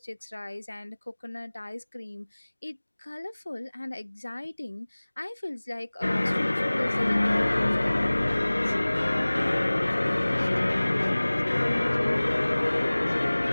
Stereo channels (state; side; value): inverted; both; correlation -1.00